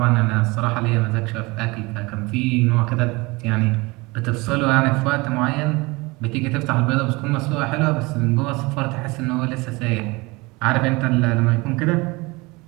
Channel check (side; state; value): left; quieter; 24.2 dB